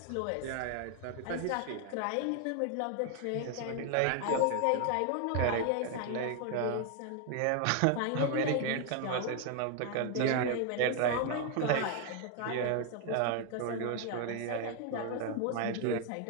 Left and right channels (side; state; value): both; different; correlation 0.01